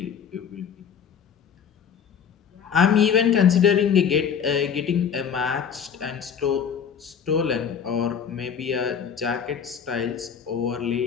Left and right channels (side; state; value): right; quieter; 7.4 dB